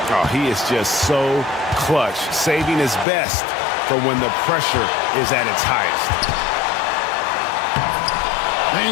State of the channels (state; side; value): drops out; right; at 3.1 s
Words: Oh, he is just so clutch, saving his best for when the pressure is at its highest.